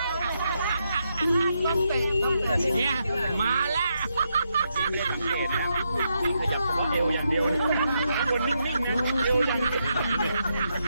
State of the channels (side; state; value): both; inverted; correlation -0.81